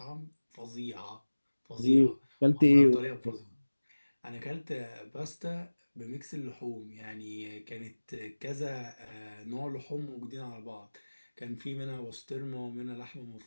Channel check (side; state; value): both; inverted; correlation -1.00